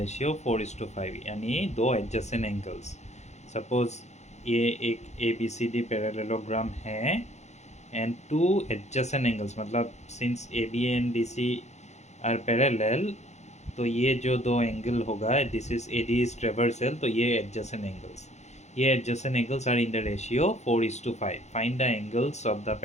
4:5 यानी दो adjacent angles। suppose ये एक ABCD parallelogram है and two adjacent angles मतलब since AB and DC are parallel तो ये जो दो एंगल होगा this is AD is transversal तो ये adjacent angles are in the ratio 4:5। Find the angles of the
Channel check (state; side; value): late; right; 0.33 ms